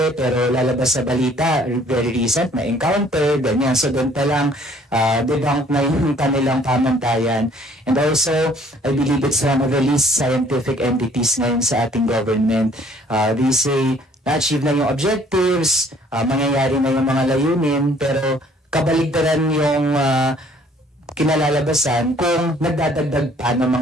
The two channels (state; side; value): normal; both; correlation 0.58